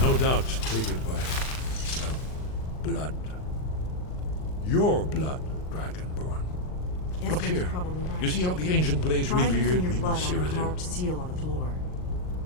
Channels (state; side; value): late; right; 39 ms